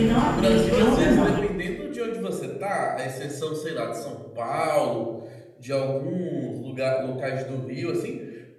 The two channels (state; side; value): identical; both; correlation 1.00